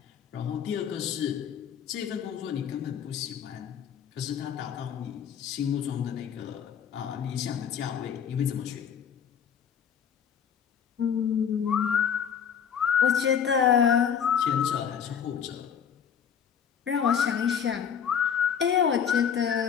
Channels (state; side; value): quieter; right; 7.9 dB